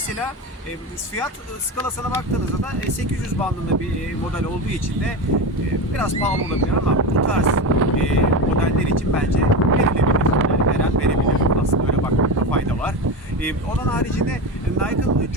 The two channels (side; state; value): both; normal; correlation 0.21